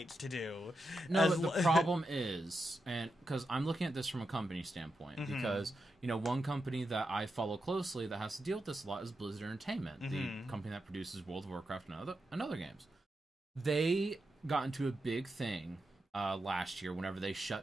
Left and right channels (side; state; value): both; normal; correlation 0.87